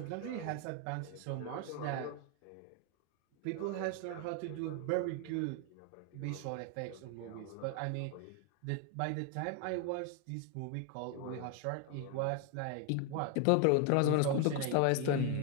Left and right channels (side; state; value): both; different; correlation 0.01